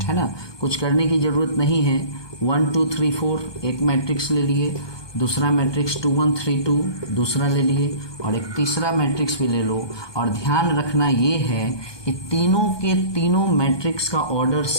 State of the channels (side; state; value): right; late; 1.2 ms